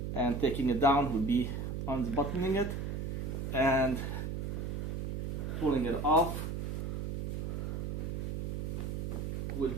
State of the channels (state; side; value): noise; right; hum, 2 dB below the sound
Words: and taking it down would be unbuttoning it and pulling it off